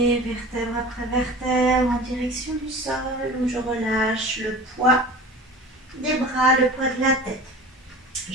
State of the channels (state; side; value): normal; both; correlation 0.38